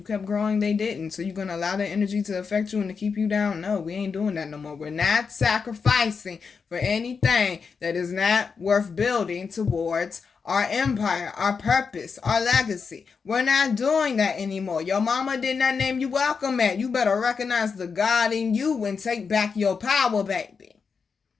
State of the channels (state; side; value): quieter; right; 5.5 dB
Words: kept growing, they didn't. So you're gonna allow that energy to affect you and to keep you down? No, we ain't doing that no more. We're not sacrificing for anything that is not worth building towards our empire, our purpose, our legacy. We're not doing that anymore. Your mama did not name you welcome at. You better recognize the God in you and take back your power, baby.